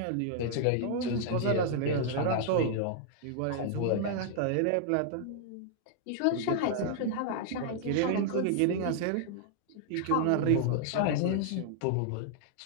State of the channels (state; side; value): different; both; correlation -0.01